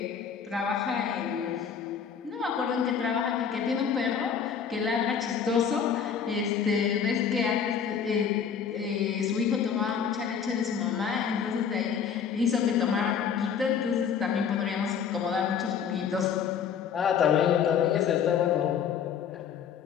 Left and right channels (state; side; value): quieter; right; 7.3 dB